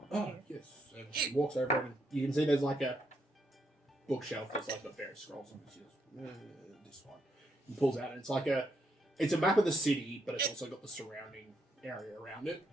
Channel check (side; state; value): both; normal; correlation 0.77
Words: Oh, You? yes. And he walks over and you can see there's like a bookshelf that's like got various scrolls on it. He goes, this one. He pulls out and it's a map of the city, but it's also got the surrounding area around it.